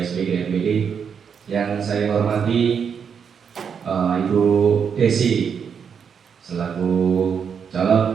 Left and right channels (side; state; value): left; quieter; 6.9 dB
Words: SPG NPD. Yang saya hormati Ibu Desi selaku